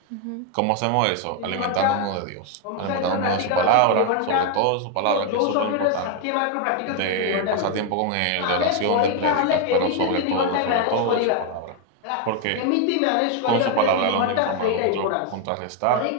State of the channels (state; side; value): different; both; correlation 0.01